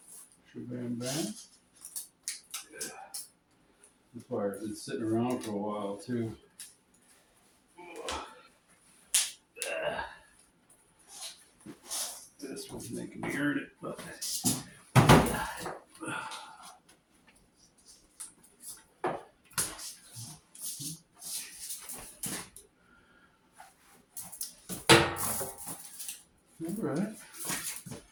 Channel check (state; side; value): identical; both; correlation 1.00